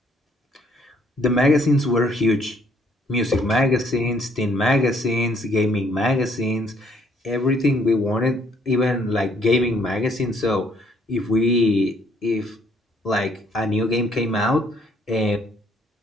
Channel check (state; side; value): normal; both; correlation 0.66